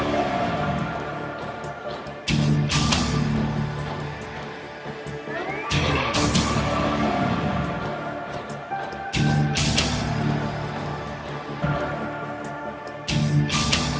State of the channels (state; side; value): identical; both; correlation 1.00